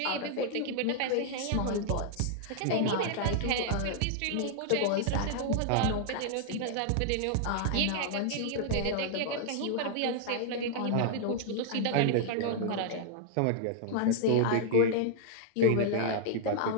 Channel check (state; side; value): different; both; correlation -0.01